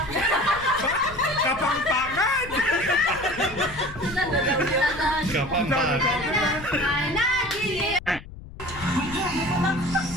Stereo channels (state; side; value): noise; left; rumble, 15 dB below the sound